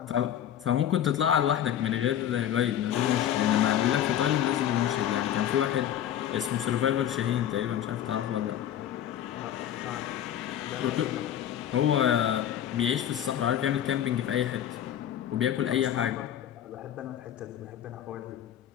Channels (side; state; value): right; quieter; 10.7 dB